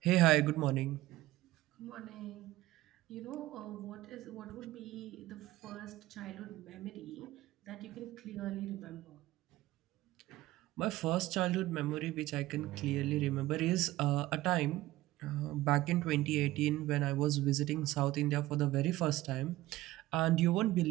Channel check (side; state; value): left; quieter; 16.9 dB